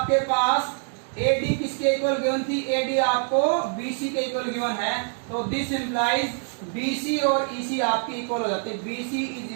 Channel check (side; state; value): left; silent; 62 dB below the other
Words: पास AD किसके इक्वल गिवन थी? AD आपको BC के इक्वल गिवन है. तो दिस इंप्लाइज BC और EC आपकी इक्वल हो जाते हैं. BC